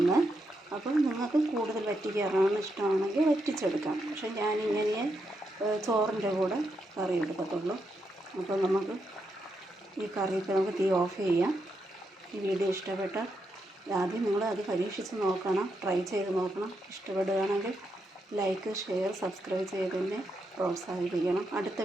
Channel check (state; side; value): normal; both; correlation 0.82